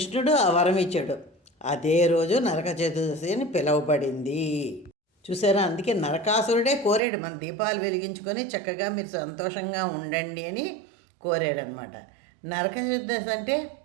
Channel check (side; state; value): left; drops out; at 7.0 s